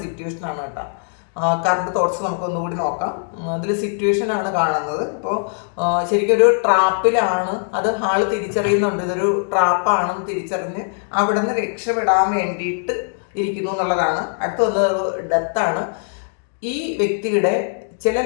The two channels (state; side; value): silent; right; digital silence